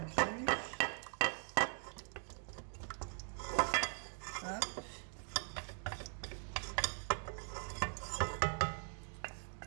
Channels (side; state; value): left; silent; 50 dB below the other